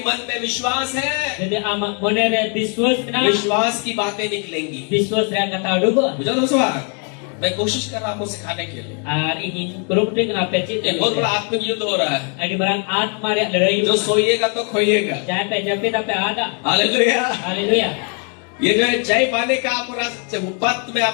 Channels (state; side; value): quieter; right; 39.8 dB